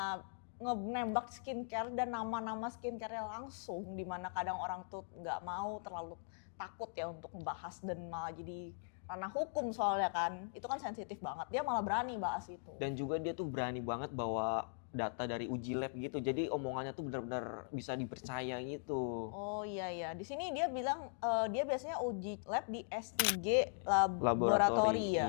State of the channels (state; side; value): silent; right; digital silence